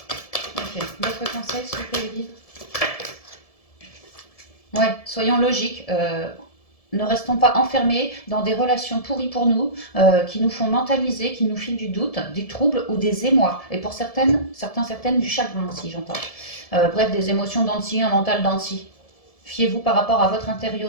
Ok, d'autres conseils s'il vous plaît, Edith? Ouais, soyons logiques. Ne restons pas enfermés dans des relations pourries pour nous, qui nous font mentaliser, qui nous filent du doute, des troubles ou des émois. Et pour certaines du chagrin aussi, j'entends. Bref, des émotions dents de scie, un mental dents de scie. Fiez-vous par rapport à votre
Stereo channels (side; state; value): right; late; 1.7 ms